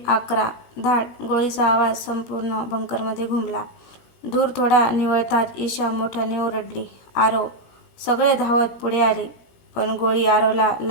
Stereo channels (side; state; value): right; late; 16 ms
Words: 11 धाड गोळीचा आवाज संपूर्ण बंकरमध्ये घुमला. धूर थोडा निवळताच ईशा मोठ्याने ओरडली, आरव! सगळे धावत पुढे आले, पण गोळी आरवला